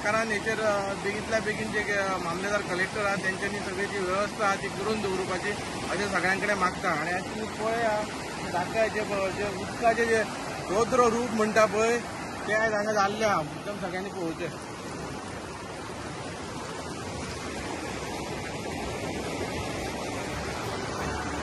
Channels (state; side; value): identical; both; correlation 1.00